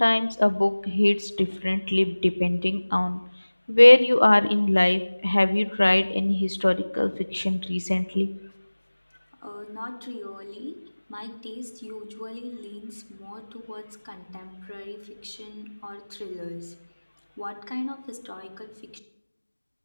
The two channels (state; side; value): inverted; both; correlation -1.00